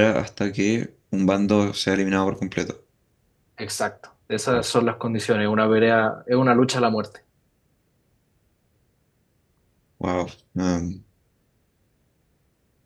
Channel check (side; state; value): both; identical; correlation 1.00